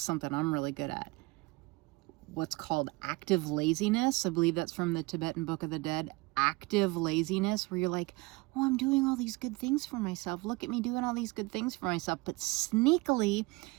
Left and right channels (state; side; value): quieter; left; 23.6 dB